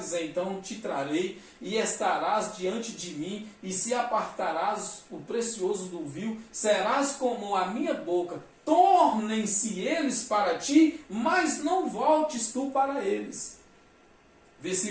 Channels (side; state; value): both; identical; correlation 1.00